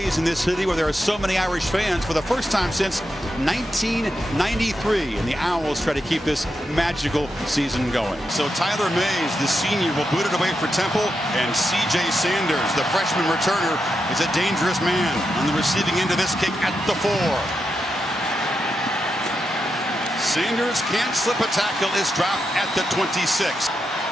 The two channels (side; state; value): both; normal; correlation 0.86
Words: in this city where there are so many Irish fans for the first time since 1993. And the Owls try to keep this magical season going. So Tyler Mays, the senior, will boot it away for Temple. And C.J. Sanders, the freshman returner, is a dangerous man on the receiving end of this kick at the 4. Sanders can't slip a tackle, is dropped at the 26.